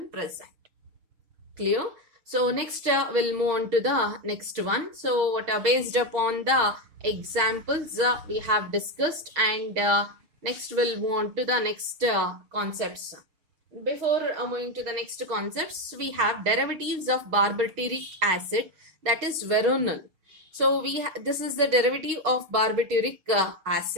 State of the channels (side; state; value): left; late; 6.3 ms